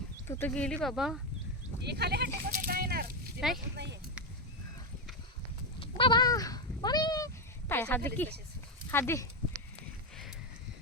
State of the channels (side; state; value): both; normal; correlation 0.07